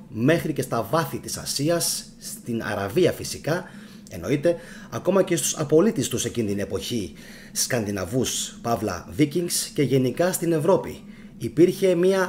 μέχρι και στα βάθη της Ασίας, στην Αραβία φυσικά, εννοείται, ακόμα και στους απολύτες τους εκείνη την εποχή, Σκανδιναβούς, παύλα Βίκινγκς, και γενικά στην Ευρώπη. Υπήρχε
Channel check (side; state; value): both; identical; correlation 1.00